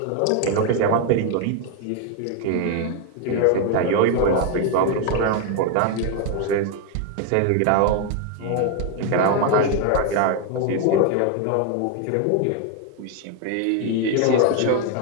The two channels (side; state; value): both; different; correlation 0.01